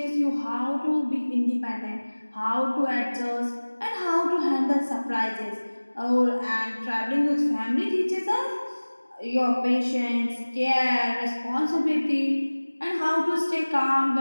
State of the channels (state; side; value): inverted; both; correlation -1.00